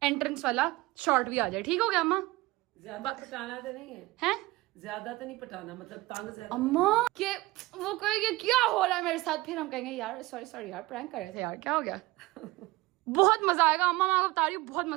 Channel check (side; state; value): left; quieter; 20.2 dB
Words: एंट्रेंस वाला शॉट भी आ जाए। ठीक हो गया अम्मा? ज्यादा पटाना तो नहीं है, हैं? ज्यादा तो नहीं पटाना, मतलब तंग ज्यादा। अम्मा के वो कहेंगे क्या हो रहा है मेरे साथ, फिर हम कहेंगे यार सॉरी यार प्रैंक कर रहे थे यार, क्या हो गया। बहुत मजा आएगा अम्मा, मैं आपको बता रही हूँ, बहुत